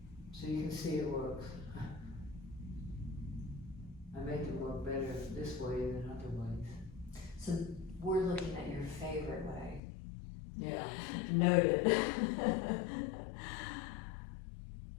So you can see it works. I make it work better this way than other ways. So we're looking at your favorite way. Yeah. Noted.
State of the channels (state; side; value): drops out; right; at 9.8 s